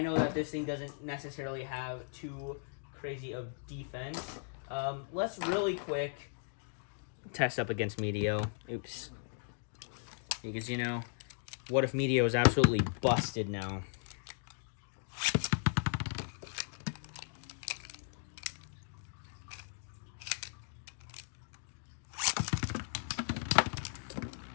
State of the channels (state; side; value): silent; right; digital silence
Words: know that this thing doesn't necessarily have too crazy of defense. Let's really quick test up against Meteo. Oops. Because, you know, what if Meteo is absolutely busted now?